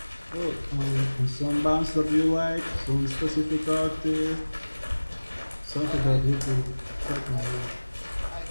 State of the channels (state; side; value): inverted; both; correlation -1.00